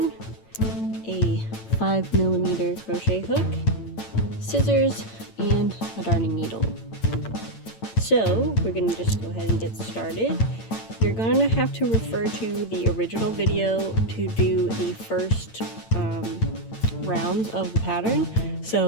a 5mm crochet hook, scissors, and a darning needle. So we're going to just go ahead and get started. You're going to have to refer to the original video to do the first rounds of the pattern.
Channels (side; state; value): right; late; 8.9 ms